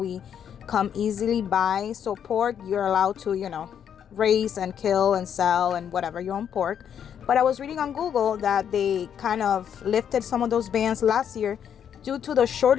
come easily by. So pork, you're allowed to, raise and kill and sell and whatever, your own pork. But I was reading on Google that they kind of lifted some of those bans last year due to the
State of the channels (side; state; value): right; quieter; 8.6 dB